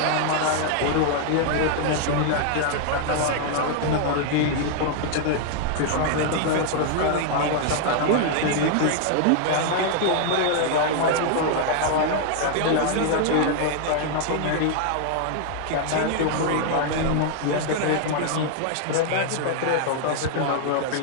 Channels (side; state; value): both; different; correlation 0.00